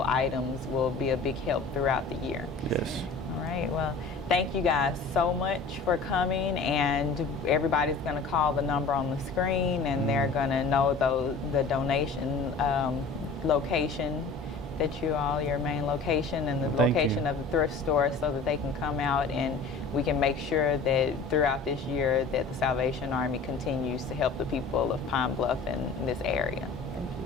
items will be a big help throughout the year. Yes. All right, well, thank you guys so much for coming, and everybody's going to call the number on the screen, and they're going to know the donation location your main location, and the location of the thrift store, so that they can come out and we can make sure that throughout this year that the Salvation Army continues to help the people of Pine Bluff and this area.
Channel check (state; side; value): quieter; right; 4.3 dB